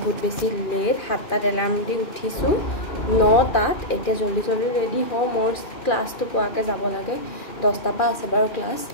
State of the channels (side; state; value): right; late; 2.4 ms